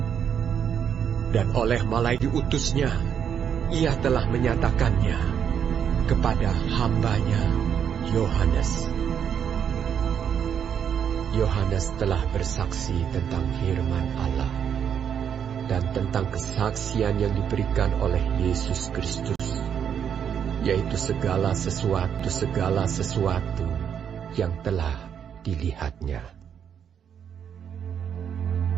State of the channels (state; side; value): quieter; left; 8.2 dB